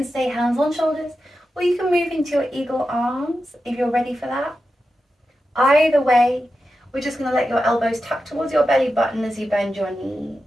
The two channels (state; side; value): normal; both; correlation 0.91